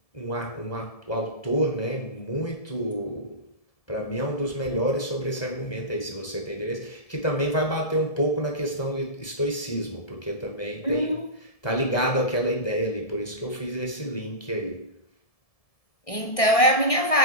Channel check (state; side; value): late; right; 1.7 ms